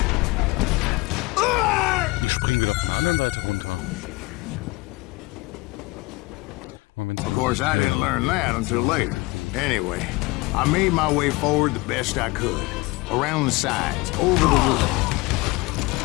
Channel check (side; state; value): right; quieter; 23.4 dB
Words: Of course, I didn't learn that until later. Anyway, I made my way forward the best I could. Around the sides, over the roof.